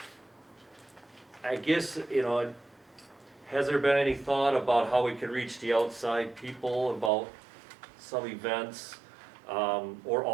I guess, has there been any thought about how we can reach the outside people about some events, or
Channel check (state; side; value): drops out; left; at 7.1 s